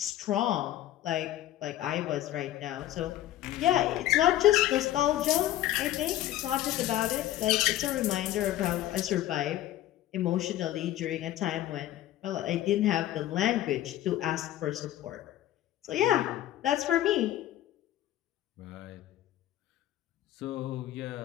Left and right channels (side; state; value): right; quieter; 13.7 dB